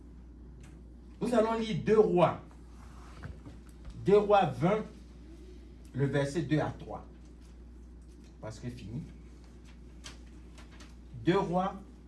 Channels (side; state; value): both; identical; correlation 1.00